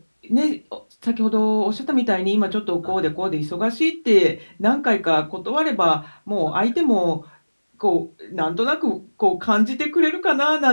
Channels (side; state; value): both; inverted; correlation -1.00